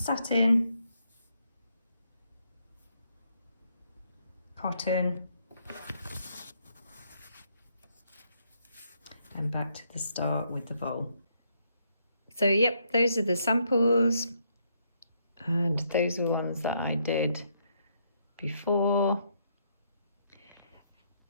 cotton, and back to the start with the voile. So yep, those are the samples, and those are the ones that I did before.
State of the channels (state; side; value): inverted; both; correlation -0.74